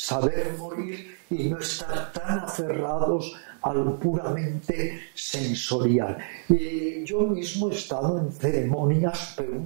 morir y no estar tan aferrados a lo puramente sensorial. Yo mismo he estado en ceremonias, pero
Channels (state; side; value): silent; left; digital silence